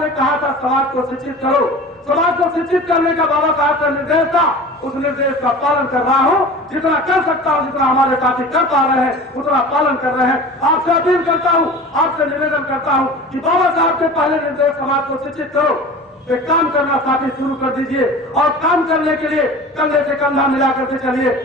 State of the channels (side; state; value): both; normal; correlation 0.38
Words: ने कहा था समाज को शिक्षित करो, समाज को शिक्षित करने का बाबा साहब का निर्देश था, उस निर्देश का पालन कर रहा हूं, जितना कर सकता हूं, जितना हमारे साथी कर पा रहे हैं उतना पालन कर रहे हैं। आपसे अपील करता हूं, आपसे निवेदन करता हूं कि बाबा साहब के पहले निर्देश समाज को शिक्षित करो, पे काम करना साथी शुरू कर दीजिए और काम करने के लिए कंधे से कंधा मिला करके चलिए,